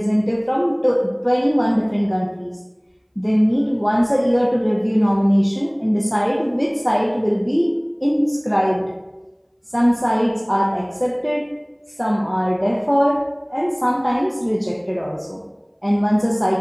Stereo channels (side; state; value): both; identical; correlation 1.00